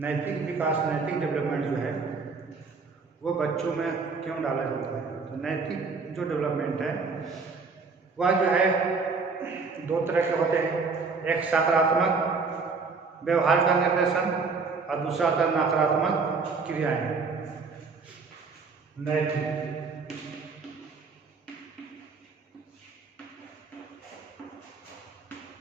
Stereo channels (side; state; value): left; quieter; 4.6 dB